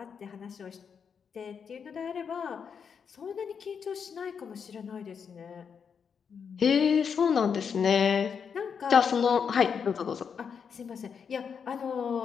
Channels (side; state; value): right; quieter; 6.7 dB